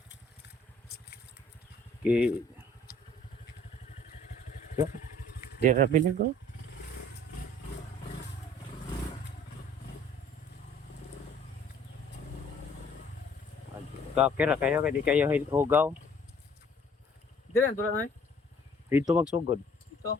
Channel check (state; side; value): normal; both; correlation 0.55